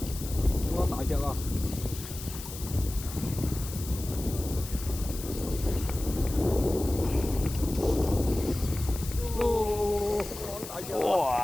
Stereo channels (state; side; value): noise; left; hiss, 11 dB below the sound